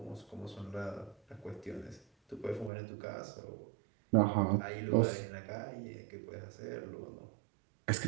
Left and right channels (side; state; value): left; drops out; at 2.7 s